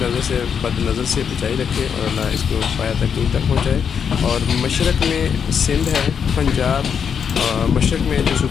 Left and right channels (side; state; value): right; quieter; 7.2 dB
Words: سے، بد نظر سے بچائی رکھے اور اللہ اس کو پایا تکمیل تک پہنچائے. اور مشرق میں سندھ ہے، پنجاب، مشرق میں جو